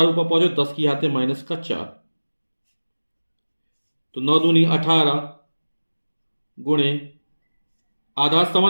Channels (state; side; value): inverted; both; correlation -1.00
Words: ऊपर पहुंचो 10 की घात -4, तो 9 दूनी 18 गुणे आधा